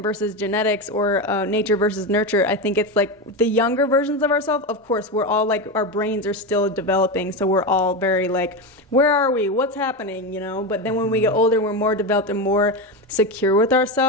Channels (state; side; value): normal; both; correlation 0.16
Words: versus genetics, or nature versus nurture. I think it's like the younger versions of ourselves, of course, we're all like, our brains are still developing, so we're all very like, where are we, what's happening, you know? But then when we get older, we're more developed and more secure with